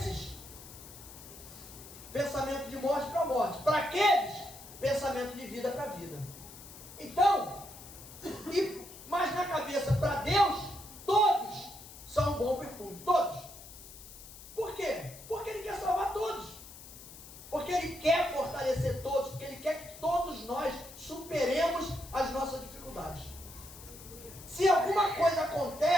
pensamento de morte para morte. Para aqueles, pensamento de vida para vida. Então, mas na cabeça, para Deus, todos são um bom perfume. Todos. Por quê? Porque Ele quer salvar todos. Porque Ele quer fortalecer todos. Porque Ele quer que todos nós superemos as nossas dificuldades. Se alguma coisa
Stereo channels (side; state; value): left; noise; hiss, 16 dB below the sound